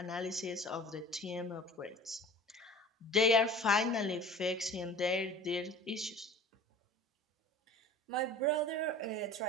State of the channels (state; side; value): normal; both; correlation 0.42